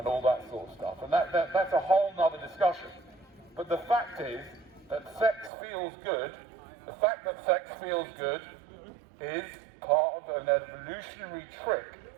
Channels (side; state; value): left; drops out; at 5.5 s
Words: all that sort of stuff. And that's a whole nother discussion. But the fact is that sex feels good. The fact that sex feels good is part of an evolutionary trick